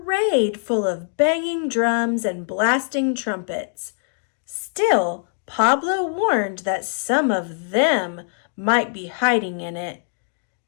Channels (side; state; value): right; silent; digital silence